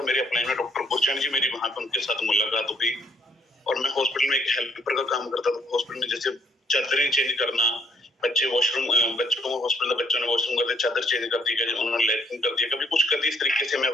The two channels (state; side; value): normal; both; correlation 0.66